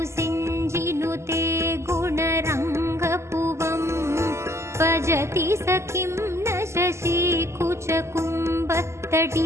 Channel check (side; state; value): left; late; 0.13 ms